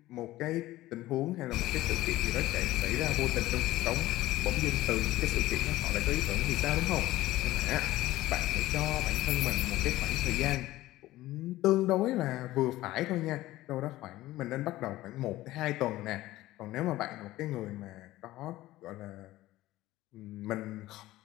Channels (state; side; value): quieter; right; 16.6 dB